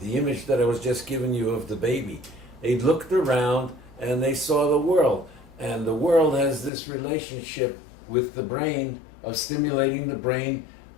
image that I was just giving you of the baby, they looked around and they saw the world, and the world has this relationship with the brain of stimulating the brain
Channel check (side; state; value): right; drops out; at 6.7 s